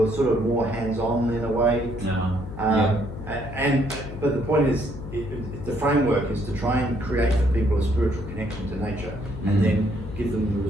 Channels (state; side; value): noise; left; hum, 10 dB below the sound